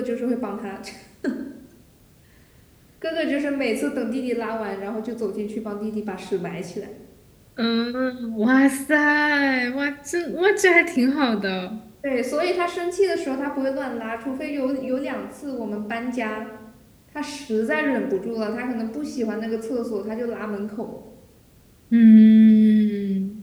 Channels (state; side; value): identical; both; correlation 1.00